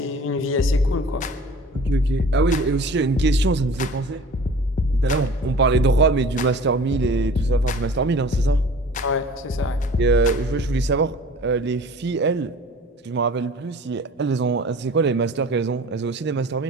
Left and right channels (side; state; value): both; normal; correlation 0.44